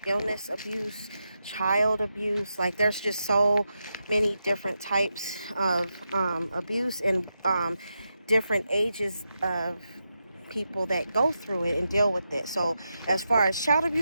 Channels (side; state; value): both; inverted; correlation -0.87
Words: illness abuse, child abuse. Like, there's just so many different types of abuse, and different ages of people that go through it and deal with it. So as far as child